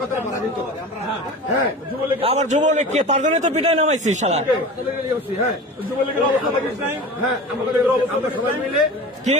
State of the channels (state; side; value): normal; both; correlation 0.34